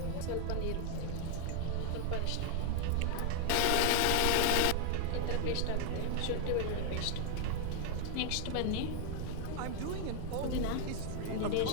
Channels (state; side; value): different; both; correlation 0.00